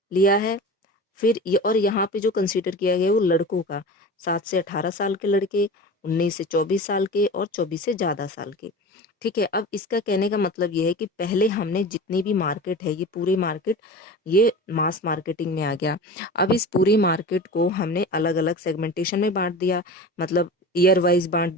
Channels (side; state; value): both; normal; correlation 0.33